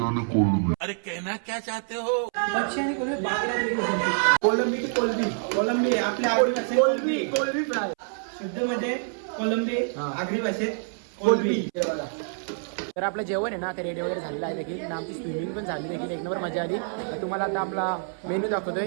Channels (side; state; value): left; silent; 60 dB below the other